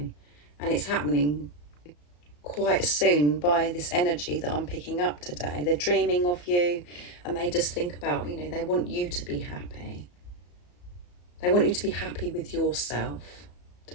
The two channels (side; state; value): right; late; 34 ms